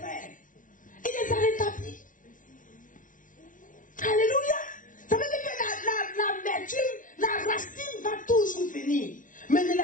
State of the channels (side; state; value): right; late; 0.38 ms